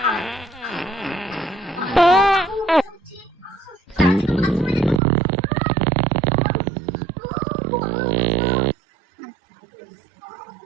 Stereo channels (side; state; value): left; drops out; at 5.0 s